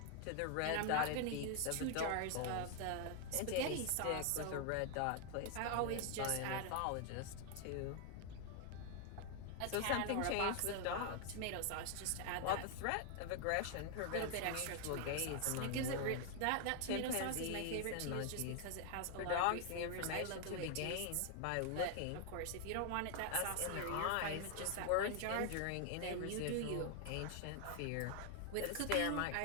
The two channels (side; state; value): both; different; correlation 0.00